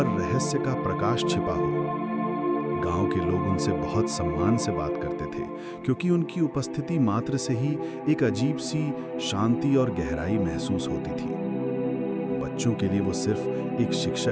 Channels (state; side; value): identical; both; correlation 1.00